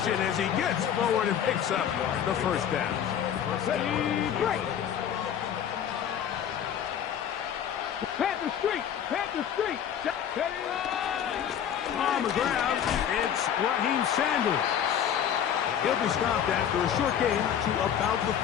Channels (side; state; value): right; quieter; 9.1 dB